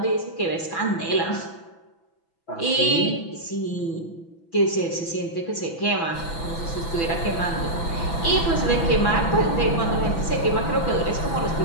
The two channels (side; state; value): right; late; 6.0 ms